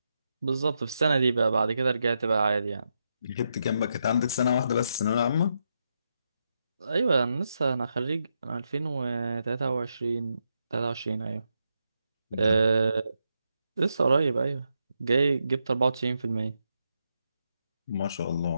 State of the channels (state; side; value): inverted; both; correlation -0.83